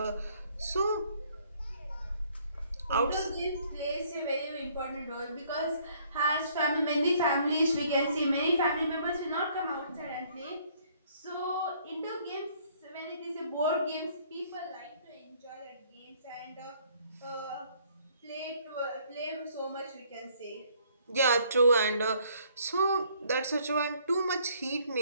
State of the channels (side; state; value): both; inverted; correlation -0.63